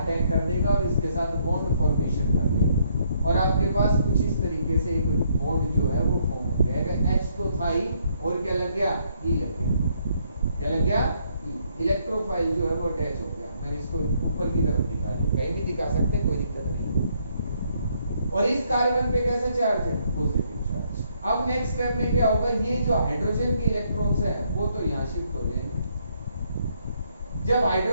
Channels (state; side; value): inverted; both; correlation -0.71